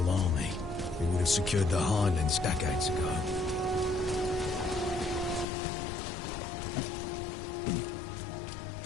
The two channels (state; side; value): drops out; right; at 5.5 s